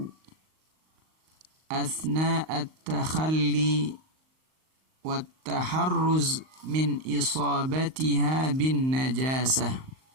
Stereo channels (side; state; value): left; late; 38 ms